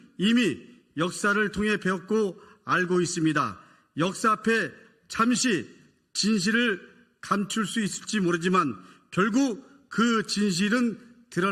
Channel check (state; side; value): identical; both; correlation 1.00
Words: 이미 역사를 통해 배웠고 알고 있습니다. 역사 앞에 잠시 진실을 감출 수 있을지 모르지만 결국 그 진실은